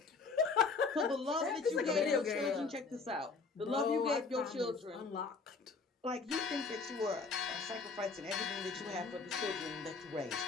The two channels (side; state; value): right; quieter; 4.5 dB